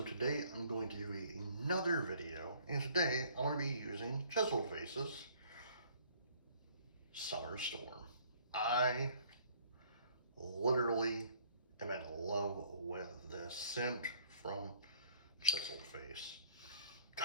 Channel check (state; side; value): inverted; both; correlation -0.58